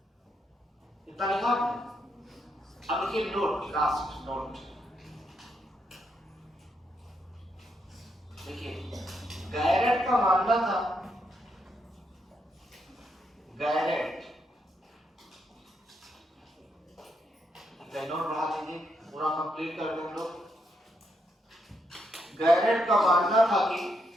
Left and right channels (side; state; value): both; normal; correlation 0.79